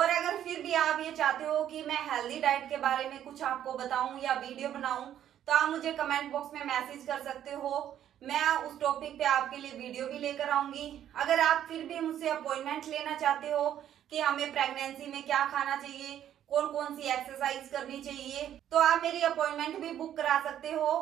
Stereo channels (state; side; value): quieter; left; 10.8 dB